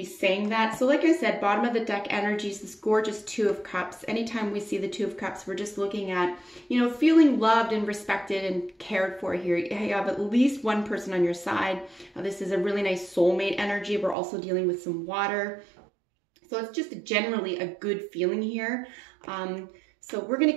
saying that. So like I said, bottom of the deck energy is this gorgeous 2 of Cups. Anytime we see the 2 of Cups, we're just looking at, feeling loved and respected and cared for here. You have at least one person on your side. This is a really nice soulmate energy. We're also dealing with some water. So it's just generally a good feeling here. So we're going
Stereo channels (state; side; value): drops out; left; at 14.2 s